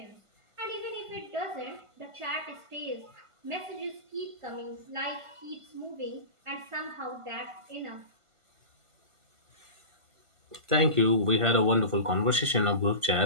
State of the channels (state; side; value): late; left; 1.5 ms